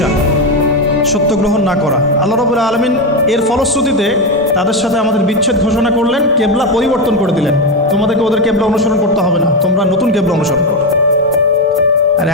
সত্য গ্রহণ না করা। আল্লাহ রাব্বুল আলামিন এর ফলশ্রুতিতে তাদের সাথে আমাদের বিচ্ছেদ ঘোষণা করলেন, কেবলা পরিবর্তন করে দিলেন। তোমাদেরকে ওদের কেবলা অনুসরণ করতে হবে না, তোমরা নতুন কেবলা অনুসরণ করো। আর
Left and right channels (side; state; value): both; normal; correlation 0.11